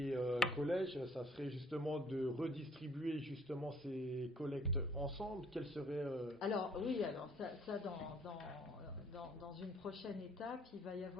collèges, ça serait justement de redistribuer justement ces collectes ensemble? Quelle serait Alors oui, alors ça dans une prochaine étape, il va y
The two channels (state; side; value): normal; both; correlation 0.60